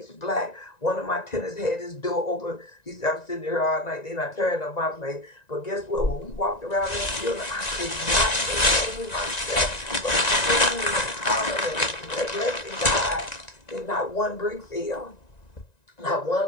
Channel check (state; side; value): late; right; 1.9 ms